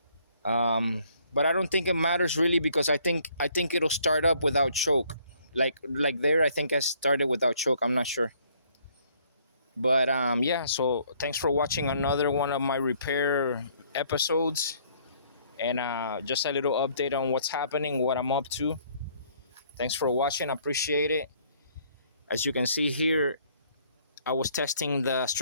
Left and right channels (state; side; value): inverted; both; correlation -0.63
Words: But I don't think it matters really, because I think it'll start up without choke. Like there, I think I started without choke. I'm not sure. But yeah. So thanks for watching another one of my repair episodes, and just a little update on what's happening, what I'm up to. Thanks for watching. I appreciate it. As you can see here, I was testing the